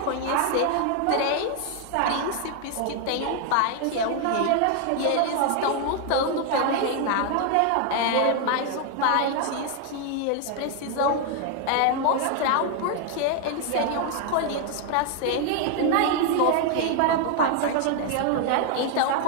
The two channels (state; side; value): different; both; correlation 0.00